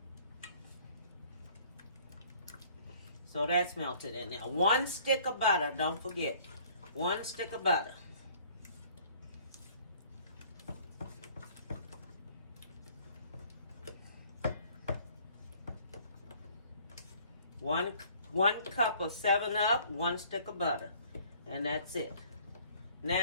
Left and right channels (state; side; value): inverted; both; correlation -0.56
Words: So that's melted in there. 1 stick of butter. Don't forget. 1 stick of butter. One cup of 7-Up, 1 stick of butter. And that's it.